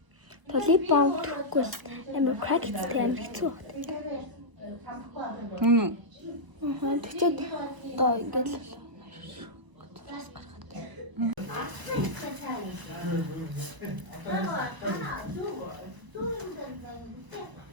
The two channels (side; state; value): left; late; 1.0 ms